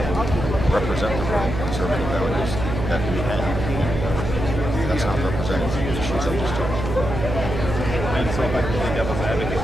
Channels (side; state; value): right; noise; hum, 4 dB below the sound